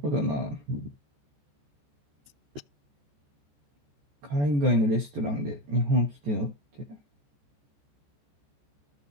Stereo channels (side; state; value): left; late; 14 ms